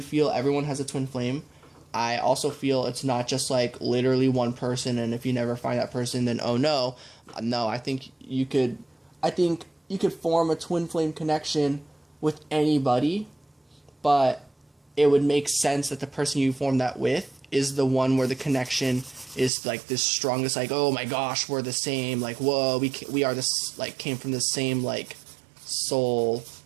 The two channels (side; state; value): left; drops out; at 19.5 s